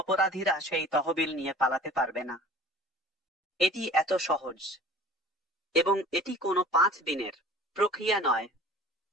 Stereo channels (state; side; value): normal; both; correlation 0.45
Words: সেই তহবিল নিয়ে পালাতে পারবে না। এটি এত সহজ এবং এটি কোনো 5 দিনের প্রক্রিয়া নয়।